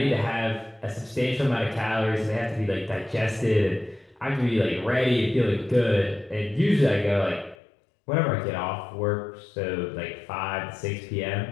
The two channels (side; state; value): right; drops out; at 7.6 s